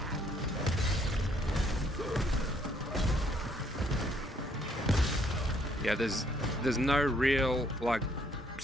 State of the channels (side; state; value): both; normal; correlation 0.67